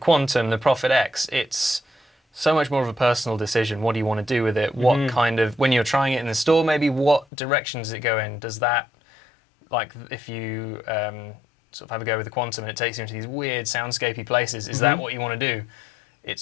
the Prophet X, it's so much more of a personal decision. What do you want to do with it? What kind of, when you're trying it in the store, maybe what direction does it go in? Does that, like if you sort of have a go with the Quantum and it takes you into these weird soundscapey places, is that what you want to do?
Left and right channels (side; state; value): right; drops out; at 7.2 s